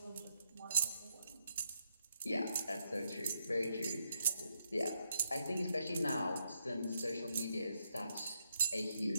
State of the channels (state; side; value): inverted; both; correlation -0.80